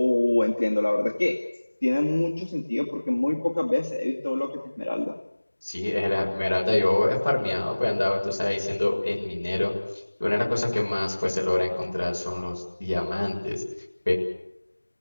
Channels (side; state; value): both; inverted; correlation -1.00